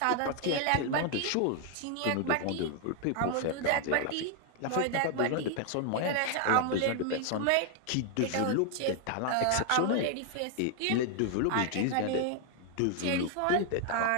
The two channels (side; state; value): both; different; correlation 0.00